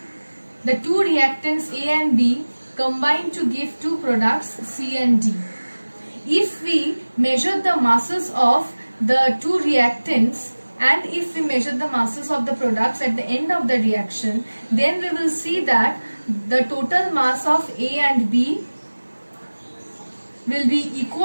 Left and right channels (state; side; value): inverted; both; correlation -1.00